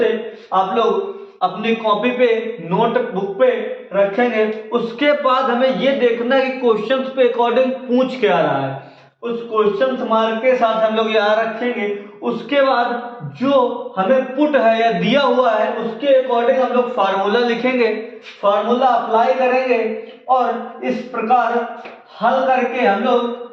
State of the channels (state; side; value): identical; both; correlation 1.00